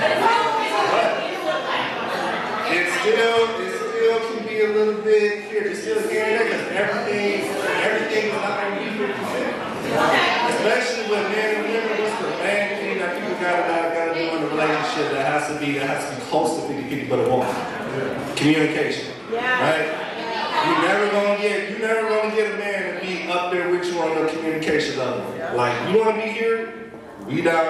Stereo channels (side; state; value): both; identical; correlation 1.00